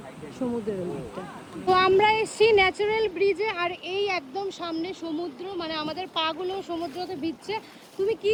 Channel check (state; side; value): identical; both; correlation 1.00